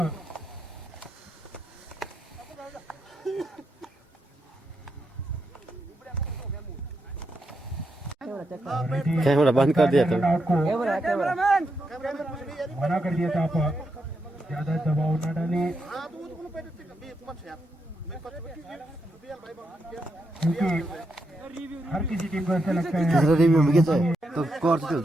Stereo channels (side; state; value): both; normal; correlation 0.83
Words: कैमरा बंद कर दिया था मना कर दिया था। आप ज्यादा दबाव न डालें क्योंकि हर किसी टीम को ऐसा लगता है तो स्कोर तो